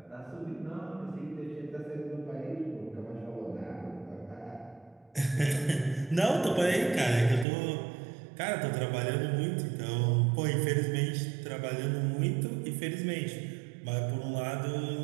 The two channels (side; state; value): left; drops out; at 7.5 s